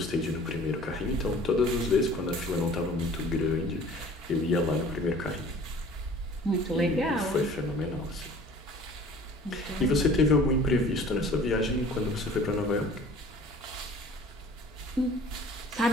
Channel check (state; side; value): normal; both; correlation 0.48